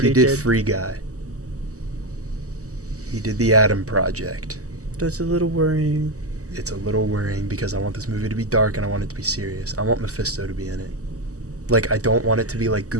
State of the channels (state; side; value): late; left; 0.66 ms